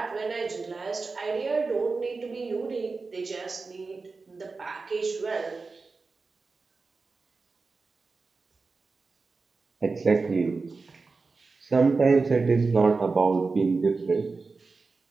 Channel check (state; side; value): quieter; left; 4.1 dB